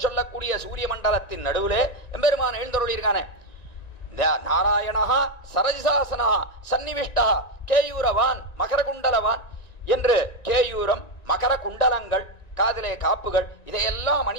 சொல்லக்கூடிய சூரிய மண்டலத்தின் நடுவுலே எம்பெருமான் எழுந்தருளிருக்கானே. நாராயணா சரஜிசாசனா சன்னிவிஷ்டா கேயூரவான் மகரகுண்டலவான் என்று கேயூரம் மகர குண்டலங்கள் காதிலே காப்புகள் இதையெல்லாம்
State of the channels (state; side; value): late; right; 1.9 ms